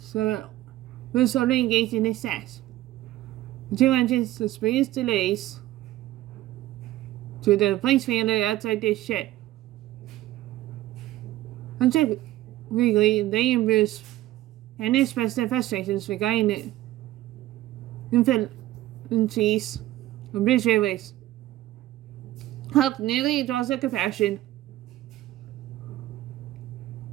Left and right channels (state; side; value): quieter; left; 15.4 dB